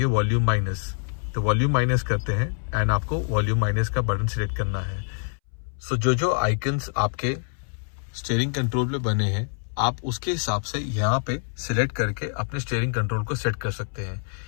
वॉल्यूम माइनस. तो वॉल्यूम माइनस करते हैं एंड आपको वॉल्यूम माइनस का बटन सिलेक्ट करना है. सो जो आइकन्स आपके स्टीयरिंग कंट्रोल में बने हैं, आप उसके हिसाब से यहाँ पे सिलेक्ट करके अपने स्टीयरिंग कंट्रोल को सेट कर सकते हैं.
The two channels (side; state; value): right; silent; 61 dB below the other